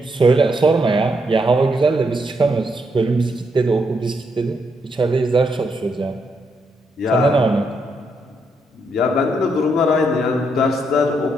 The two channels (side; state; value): both; normal; correlation 0.78